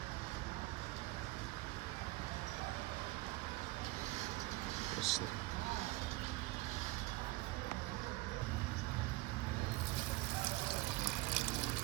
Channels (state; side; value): quieter; left; 20.6 dB